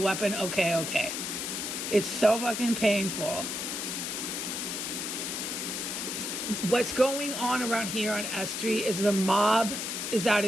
Okay. It's so fucking painful. What's going on around here on S3 is the mob is out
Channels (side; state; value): left; noise; hiss, 3 dB below the sound